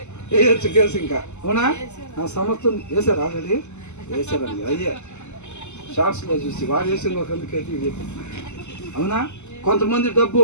వేయచ్చు కేసు. ఇంకా అవునా? నా సమస్తం వేసారు, ఆల్రెడీ వేసారండి. అయ్యే షార్ట్స్లో చూసి వాడు వేసిన ఒక అందుకైతే ఇది. అవునా? కొంతమంది డబ్బు,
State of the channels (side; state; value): right; late; 0.83 ms